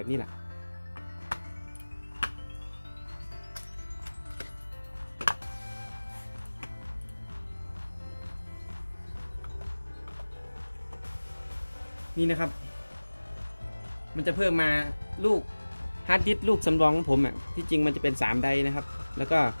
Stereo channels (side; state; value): both; inverted; correlation -1.00